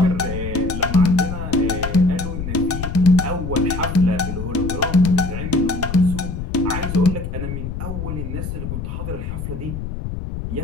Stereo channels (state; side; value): noise; left; rumble, 5 dB below the sound